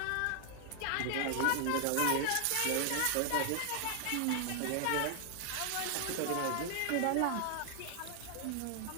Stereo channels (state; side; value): different; both; correlation 0.00